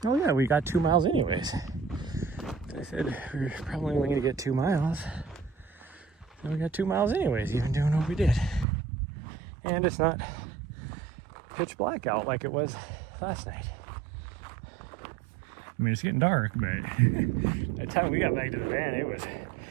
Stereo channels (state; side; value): drops out; left; at 8.7 s